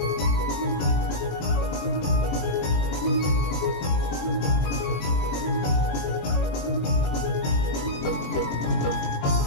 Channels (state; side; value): late; right; 21 ms